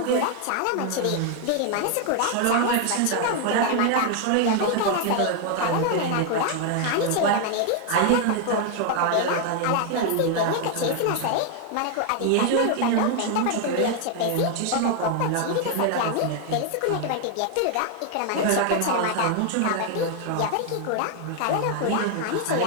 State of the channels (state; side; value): different; both; correlation 0.00